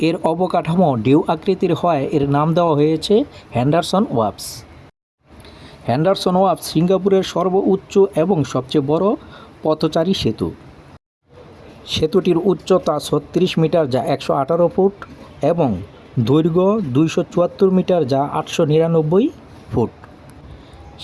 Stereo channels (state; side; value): identical; both; correlation 1.00